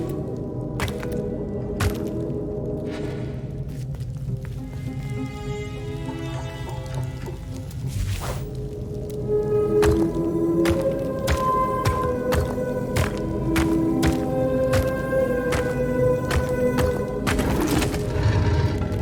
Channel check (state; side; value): identical; both; correlation 1.00